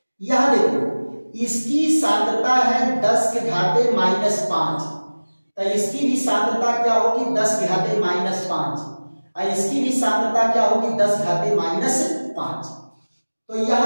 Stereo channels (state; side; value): inverted; both; correlation -1.00